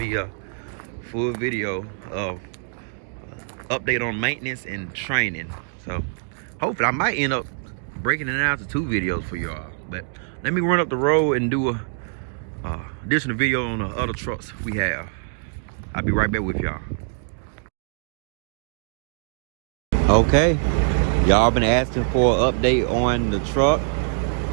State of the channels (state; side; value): silent; left; digital silence